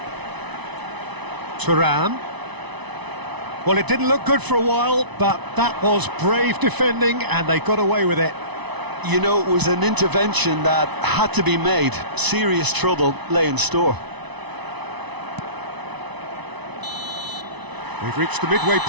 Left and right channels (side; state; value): left; late; 1.0 ms